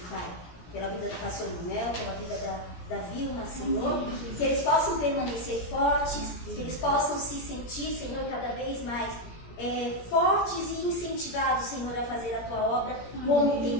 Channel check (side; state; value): right; late; 17 ms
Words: Pai, pela vida do pastor Mel, pela vida da Vilma, Senhor, que eles possam permanecer fortes, que eles possam se sentir, Senhor, cada vez mais fortes e incentivados, Senhor, a fazer a Tua obra como tem